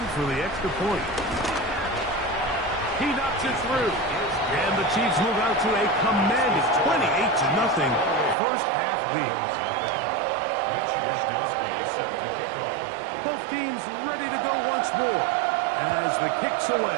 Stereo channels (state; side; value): drops out; left; at 8.3 s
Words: for the extra point. He knocks it through. And the Chiefs move out to a commanding 28-0 first half lead. Both teams ready to go once more as the kick's